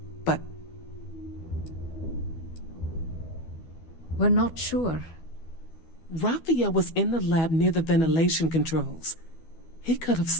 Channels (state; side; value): late; right; 12 ms